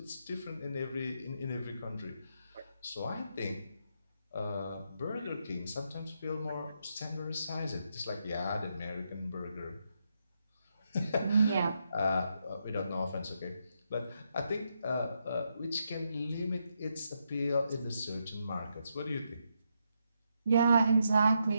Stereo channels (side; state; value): both; inverted; correlation -0.80